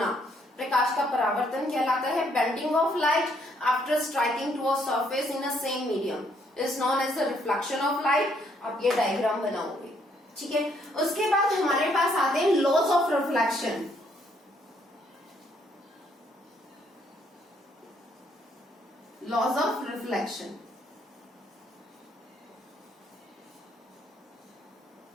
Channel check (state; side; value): normal; both; correlation 0.70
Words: प्रकाश का परावर्तन कहलाता है। Bending of light after striking to a surface in a same medium is known as the reflection of light. आप ये डायग्राम बनाओगे। ठीक है, उसके बाद हमारे पास आते हैं laws of reflection. Laws of reflection,